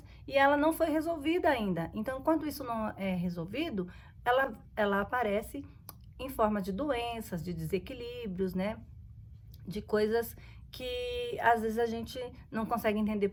e ela não foi resolvida ainda. Então, enquanto isso não é resolvido, ela aparece em forma de doenças, de desequilíbrios, né? De coisas que às vezes a gente não consegue entender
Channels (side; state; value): both; identical; correlation 1.00